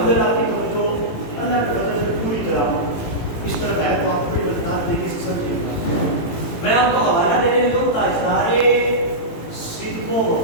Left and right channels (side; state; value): right; late; 18 ms